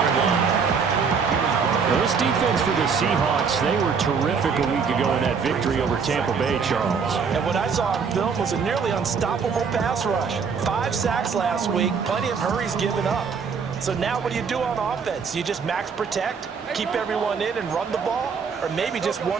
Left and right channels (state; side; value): quieter; left; 5.8 dB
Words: line. Now, this defense for the Seahawks, they were terrific a week ago in that victory over Tampa Bay, Charles. And what I saw on film was a nearly unstoppable pass rush. 5 sacks last week, plenty of hurries given up. So now what do you do on offense? You just max protect, keep everyone in and run the ball, or maybe just 1